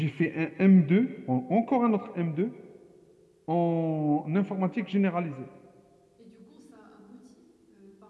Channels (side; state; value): both; identical; correlation 1.00